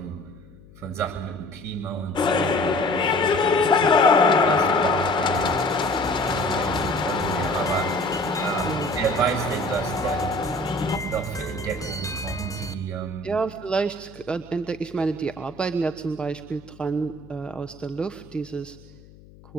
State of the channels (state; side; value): noise; left; hum, 23 dB below the sound